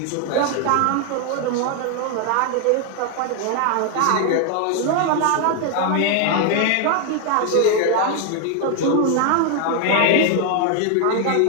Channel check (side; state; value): both; different; correlation 0.01